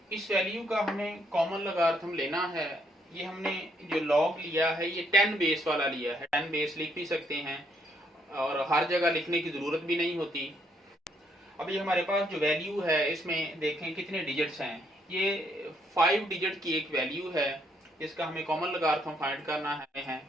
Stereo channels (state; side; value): normal; both; correlation 0.72